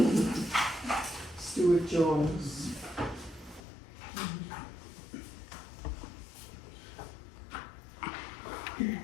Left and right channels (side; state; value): right; drops out; at 3.6 s